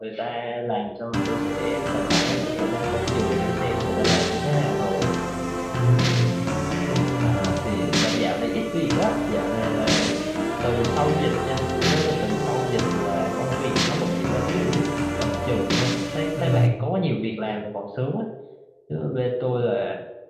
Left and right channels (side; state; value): both; identical; correlation 1.00